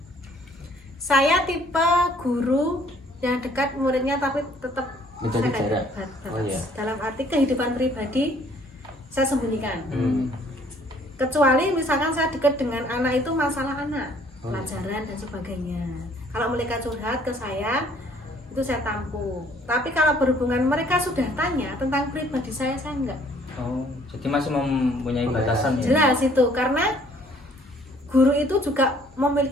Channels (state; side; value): normal; both; correlation 0.60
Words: Saya tipe guru yang dekat muridnya tapi tetap Menjaga saya jarak. batas. Oh, iya. Dalam arti kehidupan pribadi saya sembunyikan. Kecuali misalkan saya dekat dengan anak itu masalah anak, Oh, iya. pelajaran dan sebagainya. Kalau mereka curhat ke saya, itu saya tampung. Tapi kalau berhubungan mereka sudah tanya tentang pribadi saya enggak. Oh, jadi masih mempunyai Oh, ya. batasan ya? Jelas itu, karena guru itu juga